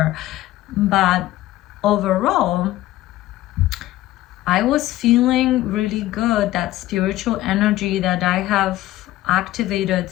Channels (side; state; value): right; quieter; 15.7 dB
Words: But overall, I was feeling really good. That spiritual energy that I have activated